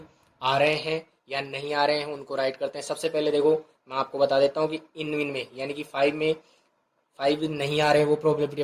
आ रहे हैं या नहीं आ रहे हैं उनको राइट करते हैं। सबसे पहले देखो मैं आपको बता देता हूँ कि इन में यानी कि 5 में 5 नहीं आ रहे हैं, वो प्रोबेबिलिटी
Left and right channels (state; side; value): identical; both; correlation 1.00